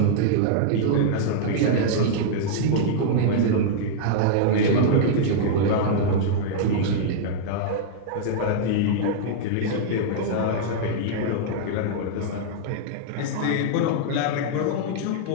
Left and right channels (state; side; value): different; both; correlation -0.02